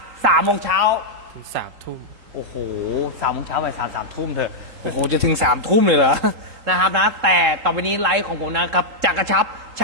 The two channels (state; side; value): late; left; 3.7 ms